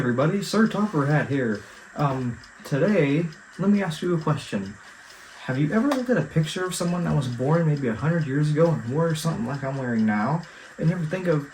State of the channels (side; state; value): both; identical; correlation 1.00